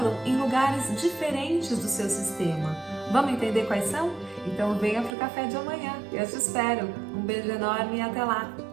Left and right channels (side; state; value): left; drops out; at 5.2 s